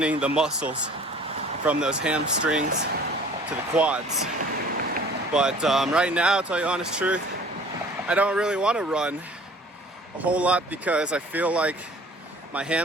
the muscles from those hamstrings to the quads. But right now, I'll tell you the honest truth, I don't really want to run a whole lot because I feel like my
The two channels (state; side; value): normal; both; correlation 0.49